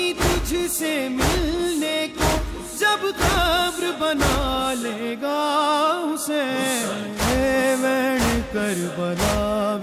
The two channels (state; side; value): identical; both; correlation 1.00